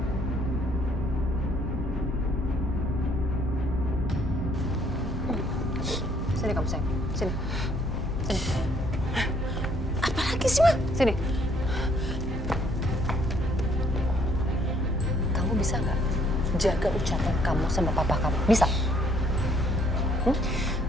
Sini kamu sayang, sini. Sini. Apa lagi sih, Ma? Sini. Kamu bisa nggak jaga ucapan kamu sama papa kamu? Bisa?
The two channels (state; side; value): normal; both; correlation 0.65